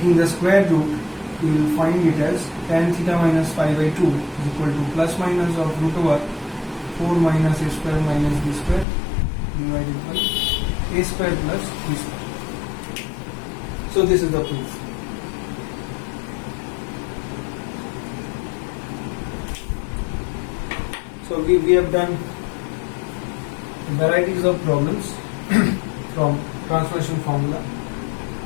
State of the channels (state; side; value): drops out; right; at 8.8 s